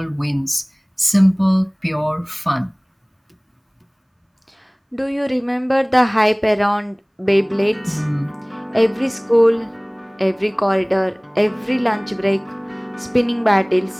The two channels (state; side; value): identical; both; correlation 1.00